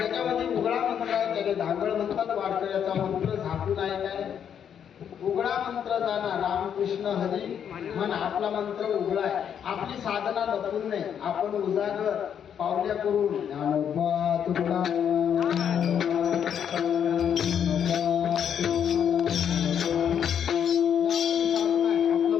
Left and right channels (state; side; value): quieter; right; 8.5 dB